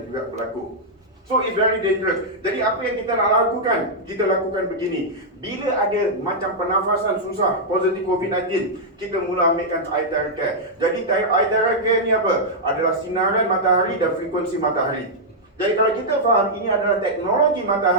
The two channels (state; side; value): normal; both; correlation -0.06